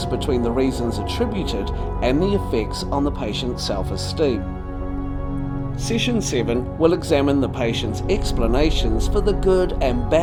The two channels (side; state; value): both; identical; correlation 1.00